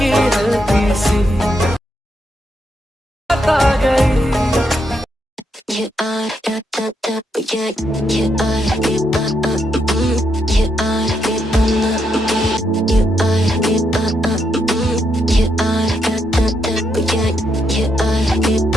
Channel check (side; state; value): both; normal; correlation 0.80